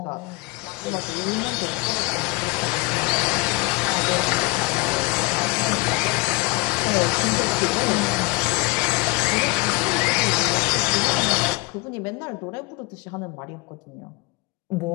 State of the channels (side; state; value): right; quieter; 26.1 dB